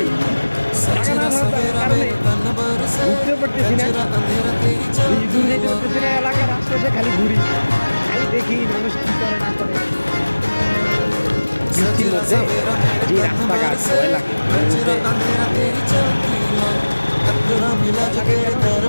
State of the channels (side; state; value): both; inverted; correlation -1.00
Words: টাকা না থাকার কারণে ঘুরতেও পারতেছি না, দূর যেতে পারতেছি না। এলাকার আশপাশে খালি ঘুরি, খালি দেখি মানুষ কি করে না করে। বৃষ্টির মধ্যে যে রাস্তাঘাট ভয় লাগে,